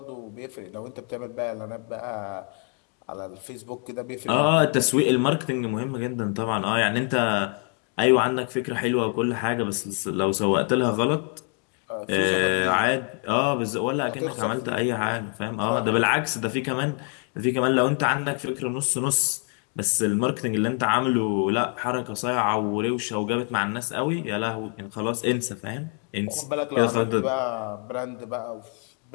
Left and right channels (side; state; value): right; quieter; 38.4 dB